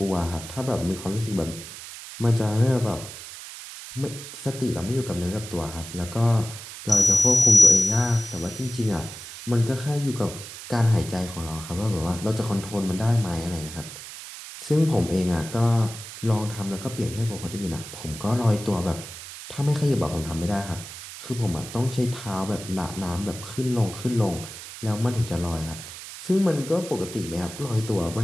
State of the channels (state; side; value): noise; right; hiss, 12 dB below the sound